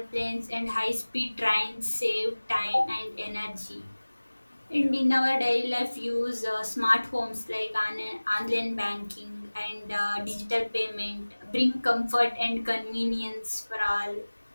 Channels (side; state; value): both; inverted; correlation -1.00